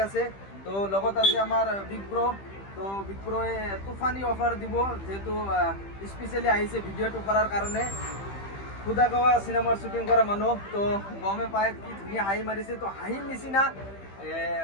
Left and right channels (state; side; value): late; right; 15 ms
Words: আছে। তো লগত আছে আমাৰ বিগ ব্ৰ'। তো বিগ ব্ৰ'য়ে তুফানী অফাৰ দিব, যিহেতু স্পেচিয়েলি আহিছে ভিডিঅ'টো কৰাৰ কাৰণে। খুদাগাঁও চিনেমাৰ শ্বুটিং কৰা মানুহ, তো গমে পায় কি ধুনীয়া হাঁহি মাৰিছে। তো হাঁহিৰ নিচিনা